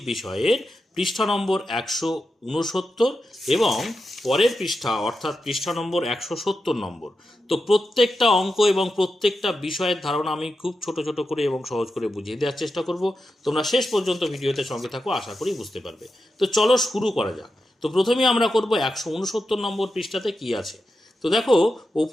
বিষয়ের পৃষ্ঠা নম্বর 169 এবং পরের পৃষ্ঠা অর্থাৎ পৃষ্ঠা নম্বর 170 নম্বর। তো প্রত্যেকটা অঙ্ক এবং প্রত্যেকটা বিষয়ের ধারণা আমি খুব ছোট ছোট করে এবং সহজ করে বুঝিয়ে দেওয়ার চেষ্টা করব। তোমরা শেষ পর্যন্ত ভিডিওতে সঙ্গে থাকো, আশা করি বুঝতে পারবে। তো চলো শুরু করা যাক। তো প্রথমেই আমরা করব 169 নম্বর পৃষ্ঠাতে কি আছে। তো দেখো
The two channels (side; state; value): both; normal; correlation 0.89